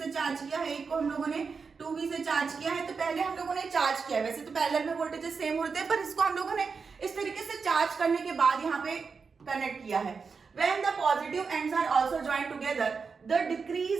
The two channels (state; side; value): quieter; left; 5.2 dB